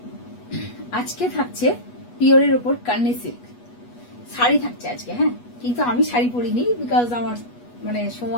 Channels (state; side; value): late; right; 8.3 ms